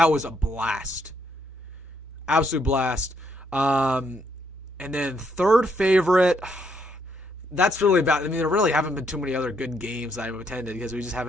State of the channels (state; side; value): normal; both; correlation 0.73